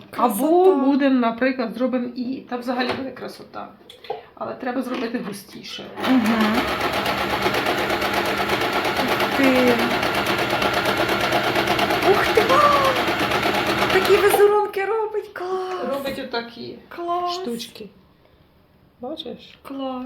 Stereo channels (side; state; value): both; identical; correlation 1.00